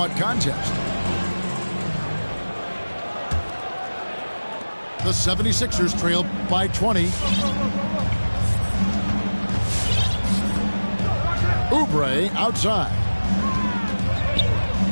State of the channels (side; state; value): both; inverted; correlation -1.00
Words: contest. The 76ers trail by 20. Oubre outside.